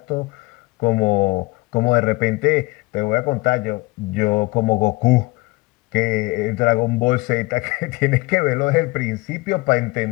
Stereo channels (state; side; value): quieter; right; 22.9 dB